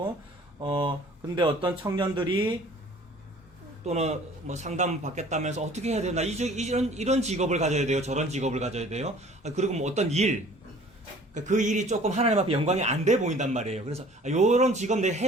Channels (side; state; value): both; normal; correlation 0.51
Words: 근데 어떤 청년들이 또는 뭐 상담 받겠다면서 어떻게 해야 되나, 이런 직업을 가져야 돼요. 저런 직업을 가져야 돼요. 그리고 뭐 어떤 일, 그 일이 조금 하나님 앞에 영광이 안 돼 보인단 말이에요. 그래서 요런 직업 내